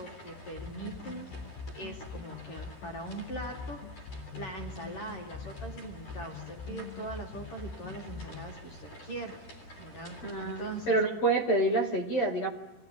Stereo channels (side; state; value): right; late; 13 ms